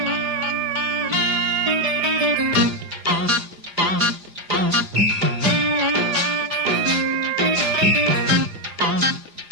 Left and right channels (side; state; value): left; late; 4.9 ms